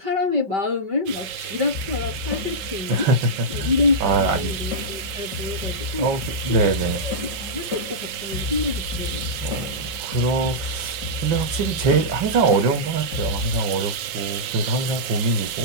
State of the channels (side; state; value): left; late; 5.4 ms